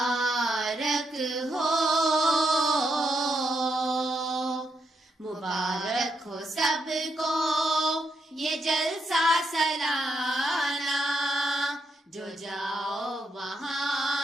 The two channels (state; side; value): normal; both; correlation 0.79